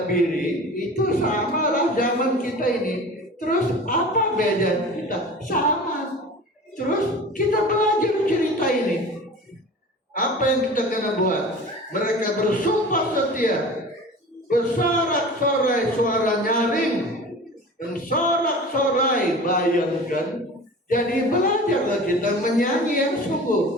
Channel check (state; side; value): normal; both; correlation 0.38